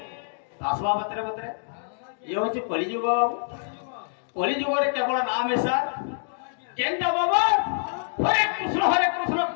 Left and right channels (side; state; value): right; silent; digital silence